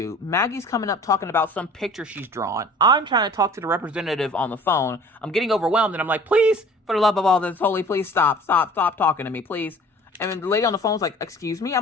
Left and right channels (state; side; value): normal; both; correlation 0.47